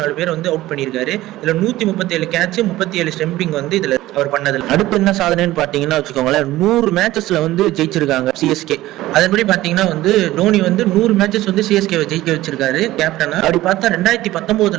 பேரை வந்து அவுட் பண்ணியிருக்காரு. இதுல 137 கேட்ச் 37 ஸ்டம்பிங் வந்து இதுல அவர் பண்ணது. அடுத்து என்ன சாதனைன்னு பாத்தீங்கன்னா வச்சுக்கோங்களேன், 100 மேட்சஸ்ல வந்து ஜெயிச்சிருக்காங்க சிஎஸ்கே. அதன்படி பாத்தீங்கன்னா வந்து டோனி வந்து 100 மேட்சஸ் வந்து சிஎஸ்கே ஜெயிக்க வச்சிருக்காரு கேப்டனா. அப்படி பார்த்தா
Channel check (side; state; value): left; quieter; 16.3 dB